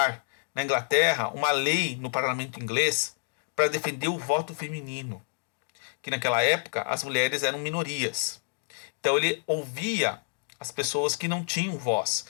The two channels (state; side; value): silent; right; digital silence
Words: na Inglaterra uma lei no parlamento inglês para defender o voto feminino, que naquela época as mulheres eram minorias. Então ele ouvia as pessoas que não tinham voz,